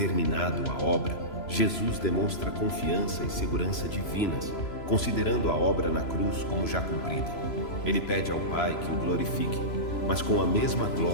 a obra, Jesus demonstra confiança e segurança divinas, considerando a obra na cruz como já cumprida. Ele pede ao Pai que o glorifique, mas com a mesma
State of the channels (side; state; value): right; late; 3.0 ms